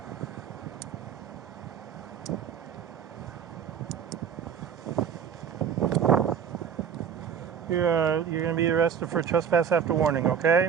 You're going to be arrested for trespass after warning,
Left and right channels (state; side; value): quieter; left; 7.6 dB